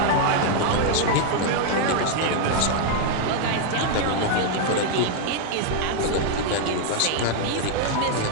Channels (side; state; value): both; different; correlation 0.00